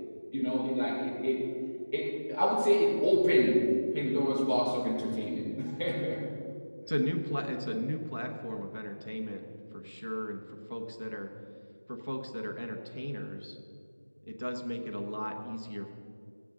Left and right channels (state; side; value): inverted; both; correlation -1.00